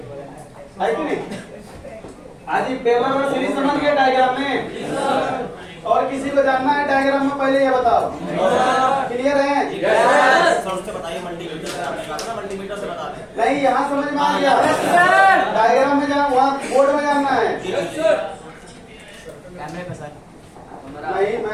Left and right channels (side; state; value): both; identical; correlation 1.00